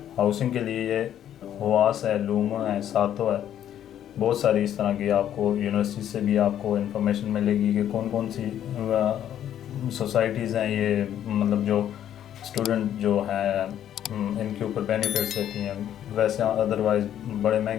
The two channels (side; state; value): right; quieter; 10.6 dB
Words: हाउसिंग के लिए ये हुआस है, लूमा है, सातो है, बहुत सारी इस तरह की आपको यूनिवर्सिटी से भी आपको इन्फॉर्मेशन मिलेगी कि कौन कौन सी सोसाइटीज़ हैं ये, मतलब जो स्टूडेंट जो हैं इनके ऊपर बेनिफिट्स देती हैं। वैसे अदरवाइज़ बड़े